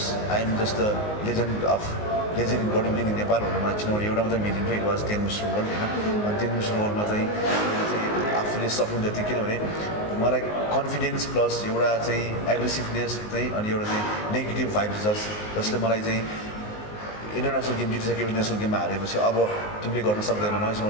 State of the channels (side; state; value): right; late; 19 ms